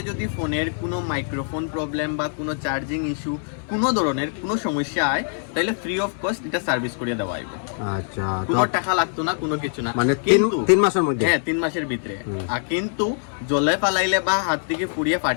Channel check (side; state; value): right; silent; 59 dB below the other